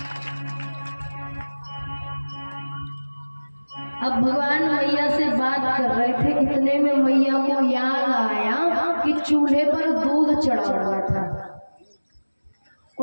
अब भगवान मैया से बात कर रहे थे, इतने में मैया को याद आया कि चूल्हे पर दूध चढ़ा हुआ था,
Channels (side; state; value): both; inverted; correlation -1.00